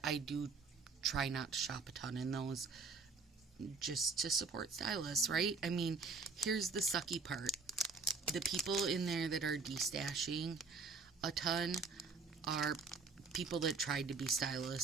I do try not to shop a ton in those, just to support stylists, right? I mean, here's the sucky part. The people in there that are destashing a ton are people that tried to be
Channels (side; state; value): left; quieter; 4.6 dB